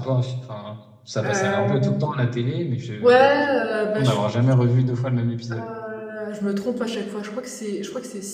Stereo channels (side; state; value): both; identical; correlation 1.00